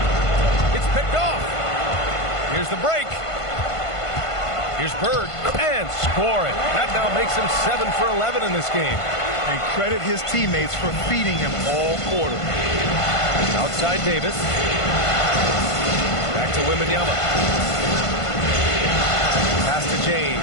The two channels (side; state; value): right; late; 1.5 ms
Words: It's picked off. Here's the break. Here's Bird, and scoring. That now makes him 7 for 11 in this game. And credit his teammates for feeding him all quarter. Outside Davis. Back to Wembanyama. Pass to